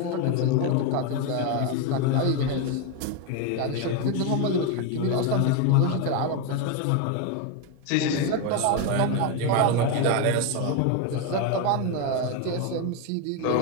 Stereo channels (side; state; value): both; different; correlation 0.02